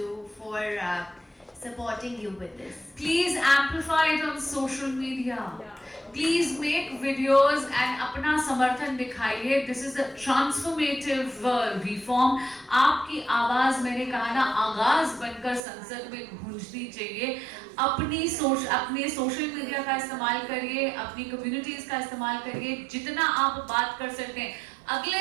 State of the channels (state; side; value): drops out; left; at 15.6 s